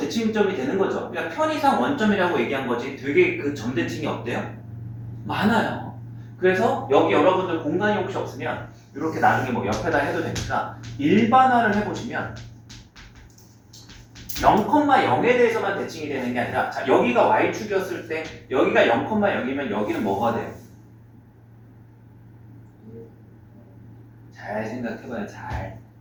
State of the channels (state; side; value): identical; both; correlation 1.00